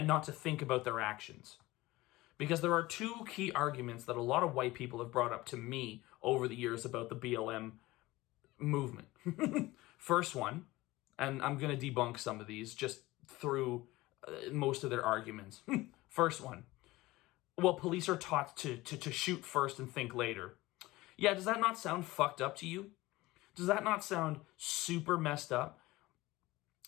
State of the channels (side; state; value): right; quieter; 19.2 dB